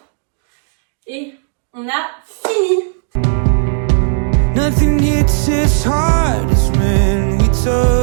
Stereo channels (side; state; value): left; silent; digital silence